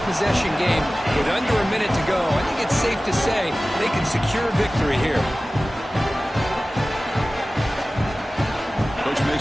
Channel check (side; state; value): both; normal; correlation 0.97